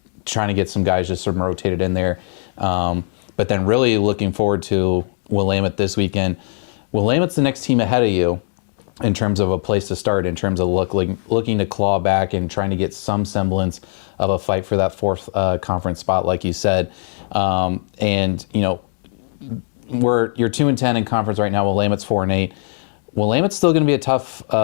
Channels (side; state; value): right; silent; 59 dB below the other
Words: trying to get some guys just sort of rotated in there. But then really looking forward to Willamette this weekend. Willamette's the next team ahead of you. in terms of a place to start, in terms of looking to claw back and trying to get some semblance of a fight for that fourth conference spot, like you said. And you're 2-10 in conference right now. Willamette's 4-8. Willamette's still going to be a tough